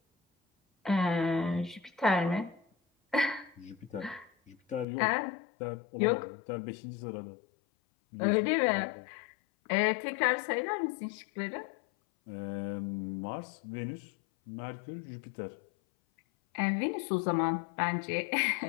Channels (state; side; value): drops out; right; at 4.9 s